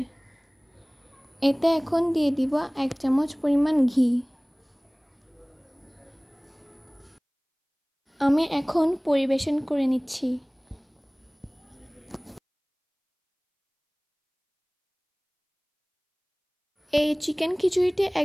এতে এখন দিয়ে দিব 1 চামচ পরিমাণ ঘি। আমি এখন পরিবেশন করে নিচ্ছি। এই চিকেন খিচুড়িটি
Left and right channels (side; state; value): both; identical; correlation 1.00